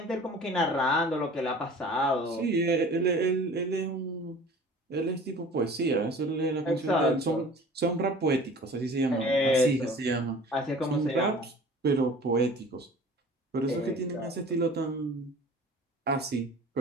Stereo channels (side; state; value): both; normal; correlation 0.44